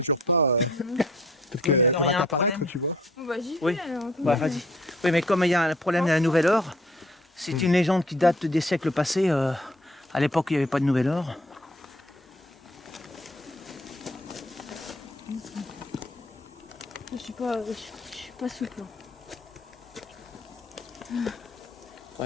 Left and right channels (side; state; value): both; normal; correlation 0.58